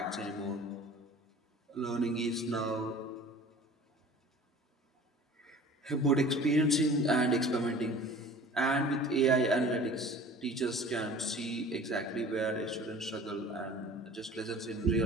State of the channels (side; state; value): both; normal; correlation 0.44